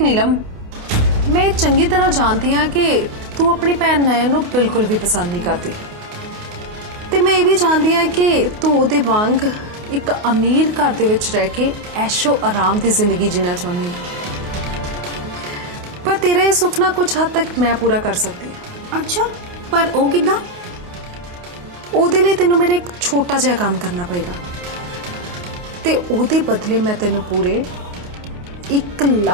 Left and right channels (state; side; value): late; left; 28 ms